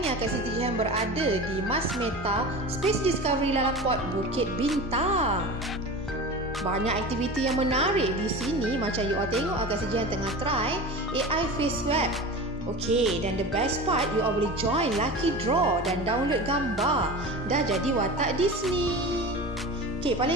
ni Kak Siti Jihan berada di Mas Meta Space Discovery Lalaport Bukit Bintang. Banyak aktiviti yang menarik di sini. Macam you all tengok Kak Siti Jihan tengah try AI face swab. Okey, dan the best part, you all boleh join lucky draw dan download gambar. Dah jadi watak Disney. Okey,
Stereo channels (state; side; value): normal; both; correlation 0.32